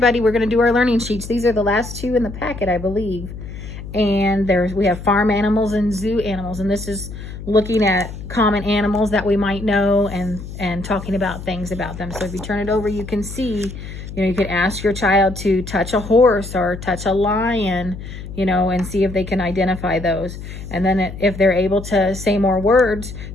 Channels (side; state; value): left; noise; hum, 11 dB below the sound